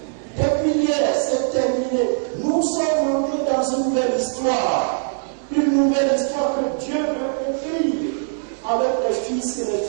Depuis hier, c'est terminé. Nous sommes montés dans une nouvelle histoire. Une nouvelle histoire que Dieu veut écrire avec les fils et les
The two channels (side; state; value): left; silent; 65 dB below the other